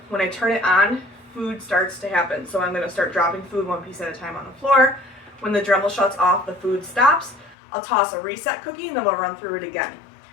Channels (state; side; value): drops out; right; at 7.6 s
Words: when I turn it on, food starts to happen. So I'm going to start dropping food one piece at a time on the floor. When the Dremel shuts off, the food stops. I'll toss a reset cookie and then I'll run through it again.